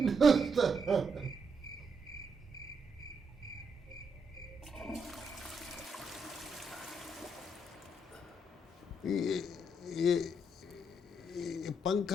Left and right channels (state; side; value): normal; both; correlation 0.78